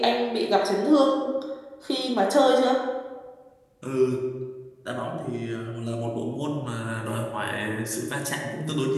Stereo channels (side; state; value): both; identical; correlation 1.00